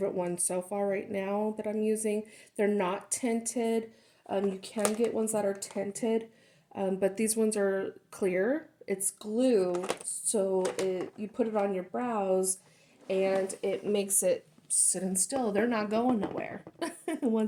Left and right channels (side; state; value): both; identical; correlation 1.00